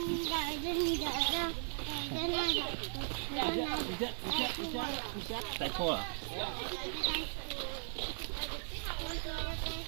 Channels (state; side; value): silent; left; digital silence